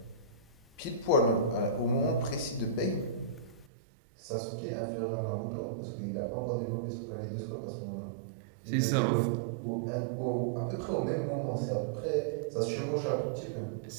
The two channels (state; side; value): drops out; left; at 3.7 s